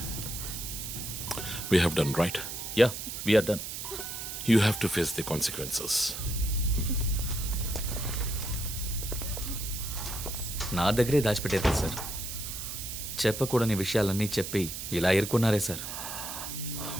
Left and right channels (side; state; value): right; noise; hiss, 7 dB below the sound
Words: We have done right. Yeah, we are done. You have to face the consequences. నా దగ్గరే దాచిపెట్టారు కదా సార్. చెప్పకూడని విషయాలన్నీ చెప్పి ఇలా ఇరుక్కున్నారే సార్.